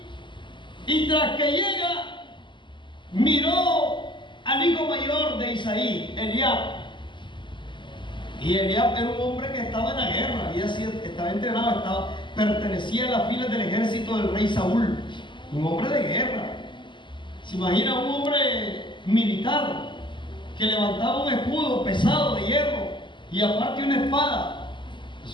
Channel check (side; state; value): right; late; 0.23 ms